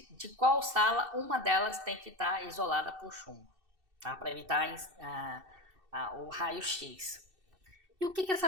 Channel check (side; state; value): left; late; 2.6 ms